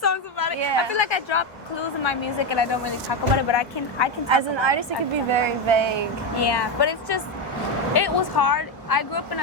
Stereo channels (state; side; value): normal; both; correlation 0.09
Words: about it. Yeah. I feel like I drop clues in my music and I don't really talk about it, but I can talk As an about artist, it could be very vague. Yeah, but it's just, it was hard. I grew up in